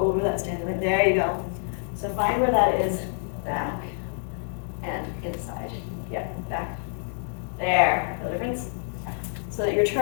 that standing leg. There you go. So find where that is. Back and inside. Yep, back. There. No difference? So that your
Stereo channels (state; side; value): silent; right; 59 dB below the other